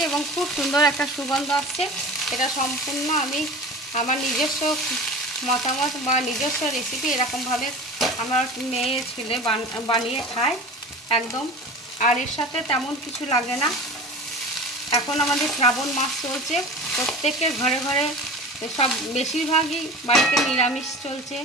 এবং খুব সুন্দর একটা সুগন্ধ আসছে। এটা সম্পূর্ণ আমি আমার নিজস্ব মতামত বা নিজস্ব রেসিপি, এরকমভাবে আমার মেয়ে ছেলে বানিয়ে খায় একদম। আর এর সাথে তেমন কিছু লাগে না। এখন আমাদের শ্রাবণ মাস চলছে, প্রত্যেকের ঘরে ঘরে সব বেশিরভাগই বাড়িতে নিরামিষ চলছে,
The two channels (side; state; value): both; normal; correlation 0.36